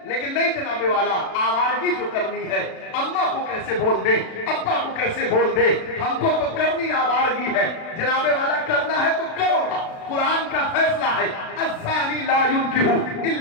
لیکن نہیں جناب والا, آوارگی جو کرنی ہے اماں کو کیسے بول دے, ابا کو کیسے بول دے, ہم کو تو کرنی آوارگی ہے. جناب والا کرنا ہے تو کرو گا, قرآن کا فیصلہ ہے الزانی لا ينكح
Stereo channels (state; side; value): late; right; 36 ms